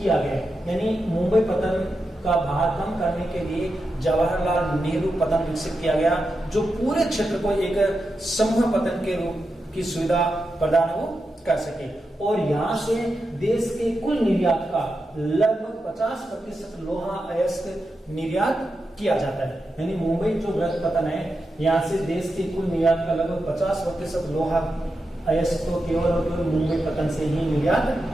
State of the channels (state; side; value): normal; both; correlation 0.88